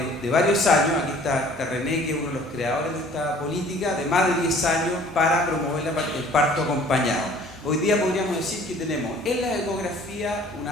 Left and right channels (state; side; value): normal; both; correlation 0.52